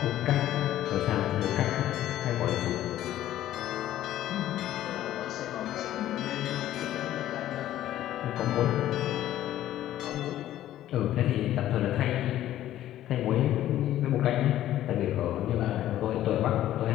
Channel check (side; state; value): right; quieter; 13.1 dB